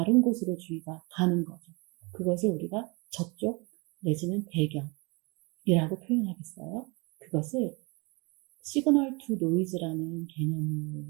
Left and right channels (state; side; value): quieter; left; 28.3 dB